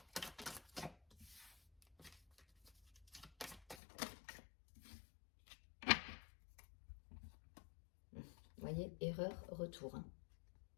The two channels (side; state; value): right; drops out; at 3.8 s